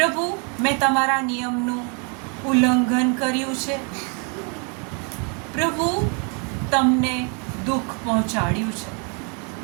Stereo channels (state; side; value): quieter; left; 36.4 dB